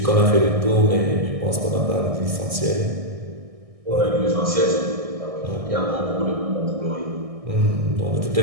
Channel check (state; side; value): late; left; 1.6 ms